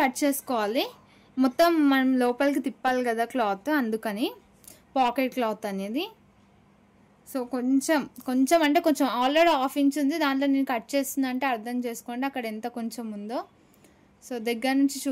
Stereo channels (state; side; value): identical; both; correlation 1.00